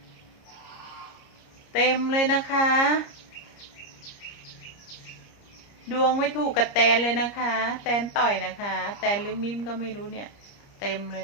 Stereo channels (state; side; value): late; right; 30 ms